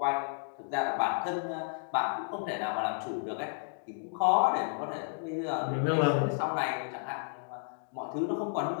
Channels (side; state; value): right; silent; digital silence